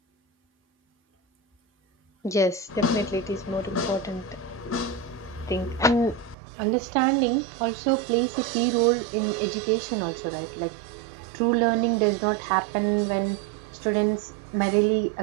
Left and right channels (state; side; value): drops out; left; at 6.4 s